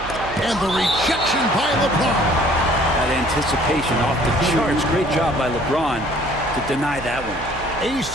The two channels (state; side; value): noise; right; hum, 13 dB below the sound